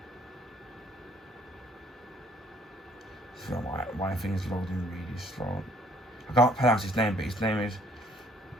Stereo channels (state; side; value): normal; both; correlation 0.60